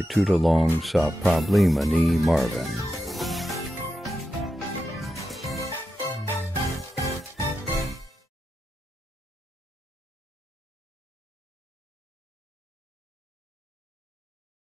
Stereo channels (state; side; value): normal; both; correlation 0.88